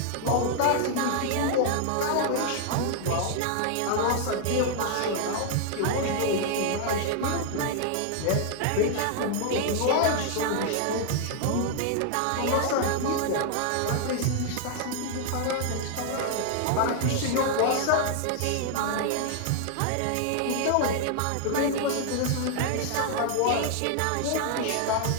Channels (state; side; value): different; both; correlation 0.00